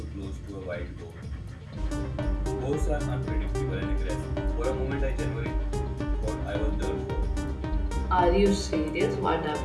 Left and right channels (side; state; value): both; identical; correlation 1.00